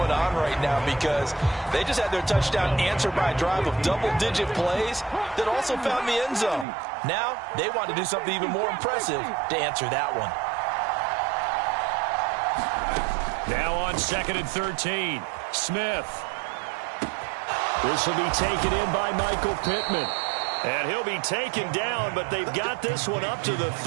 on right now, because they just had their touchdown answered by a drive of double-digit plays that also found the end zone. Now they want to do something even more impressive to answer that one. Now on 2nd and 13, Smith. This will be taken in by Michael Pittman. And he'll be taken down, but they've got this one up to the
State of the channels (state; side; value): drops out; left; at 6.7 s